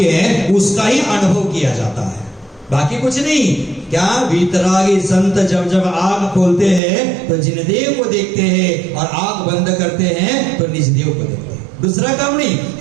है, उसका ही अनुभव किया जाता है, बाकी कुछ नहीं। क्या वीतरागी संत जब जब आंख खोलते हैं तो जिनदेव को देखते हैं, और आंख बंद करते हैं तो निजदेव को देखते हैं। दूसरा काम नहीं।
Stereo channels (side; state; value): left; drops out; at 6.8 s